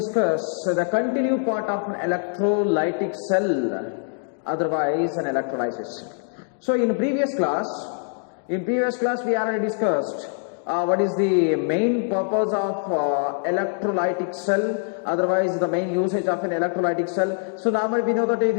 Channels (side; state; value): right; silent; digital silence